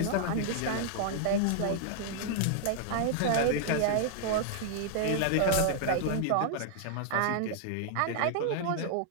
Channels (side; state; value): both; different; correlation -0.01